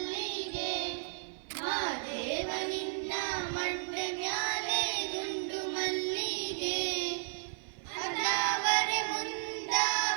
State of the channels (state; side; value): silent; left; 55 dB below the other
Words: ಮಾದೇವ ನಿನ್ನ ಮಂಡೆ ಮ್ಯಾಲೆ ದುಂಡು ಮಲ್ಲಿಗೆ ಅದಾವರೆ